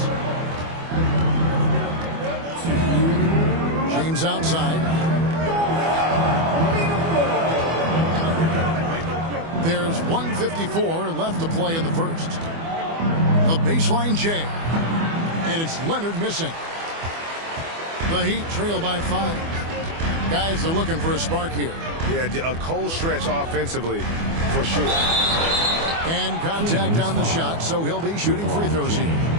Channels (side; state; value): left; late; 24 ms